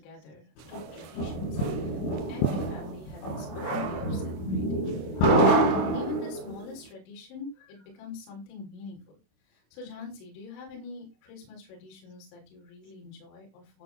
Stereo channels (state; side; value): late; right; 26 ms